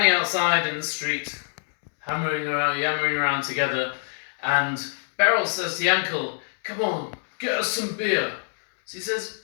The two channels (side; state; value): right; silent; digital silence